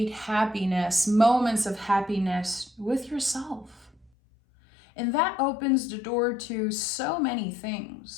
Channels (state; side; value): drops out; right; at 4.1 s